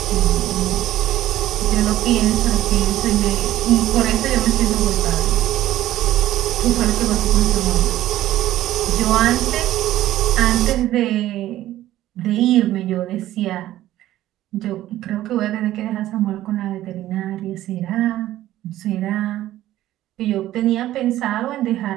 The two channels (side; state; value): left; quieter; 14.2 dB